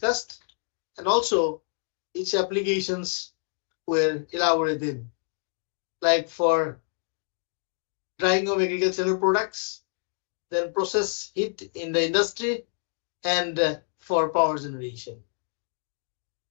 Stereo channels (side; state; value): right; silent; digital silence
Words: and also its applications were elaborated, like for drying of agricultural products, then process heat in the industry, and for power generation.